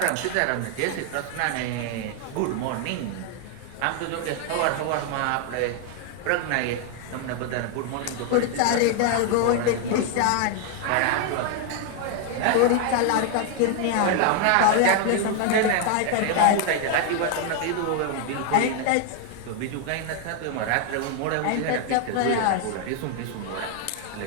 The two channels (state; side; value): different; both; correlation 0.00